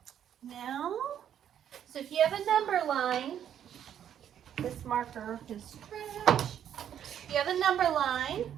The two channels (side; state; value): left; quieter; 9.7 dB